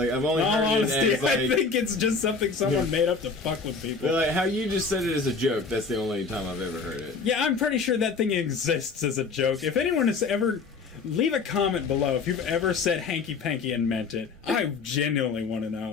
I've only In all heard honesty, it as, like, I think it's just something someone made up to fuck with people. But, like, how you just said it as a joke, that's the only time I've ever heard it. Yeah, I'm pretty sure that thing exists as a joke. If anyone has ever... Leave a comment below if you've ever said hanky-panky and meant it. I genuinely want to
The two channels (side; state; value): right; quieter; 4.7 dB